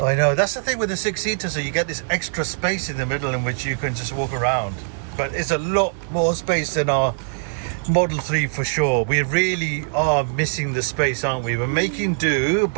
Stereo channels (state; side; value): silent; left; digital silence